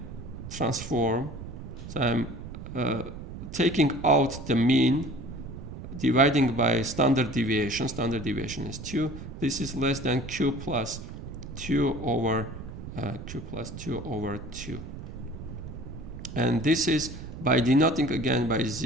transform. So I'm taking out the mean, dividing by standard deviation. Standard deviation is 2. This is less than Q plus 2 over 2. And this is by denoting again by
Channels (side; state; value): right; noise; rumble, 10 dB below the sound